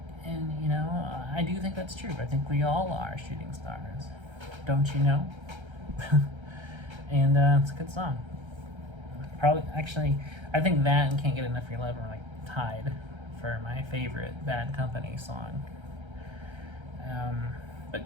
And, you know, I do think that's true. I think we all are shooting stars. Don't you know? And it's a good song. Probably, actually, I think that and Can't Get Enough of Your Love are like tied for my favorite Bad Company song.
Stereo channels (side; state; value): left; late; 1.3 ms